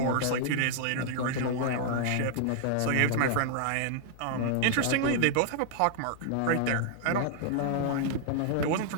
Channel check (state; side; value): different; both; correlation -0.01